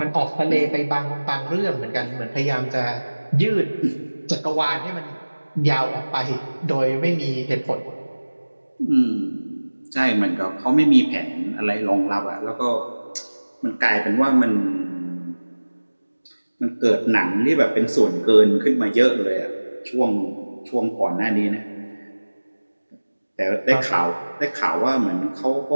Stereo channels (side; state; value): both; inverted; correlation -1.00